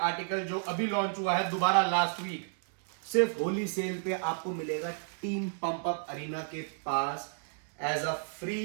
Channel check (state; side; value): silent; left; digital silence